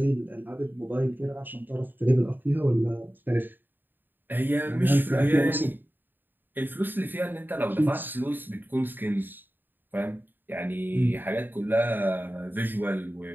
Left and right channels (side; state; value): left; late; 0.093 ms